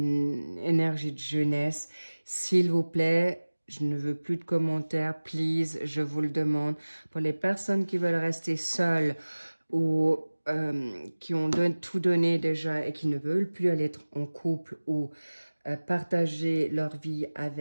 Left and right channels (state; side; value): inverted; both; correlation -1.00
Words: énergie de jeunesse. S'il vous plaît, je ne veux plus de commentaires, please, je vous le demande. Pour les personnes qui veulent rester seules ou qui ont tout donné déjà et qui ne veulent plus aller être en couple ou partager leur vie